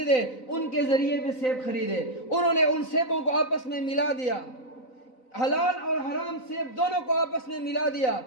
دے ان کے ذریعے بھی سیب خریدے۔ انہوں نے ان سیبوں کو آپس میں ملا دیا، حلال اور حرام سیب دونوں کو آپس میں ملا دیا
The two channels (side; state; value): right; late; 3.9 ms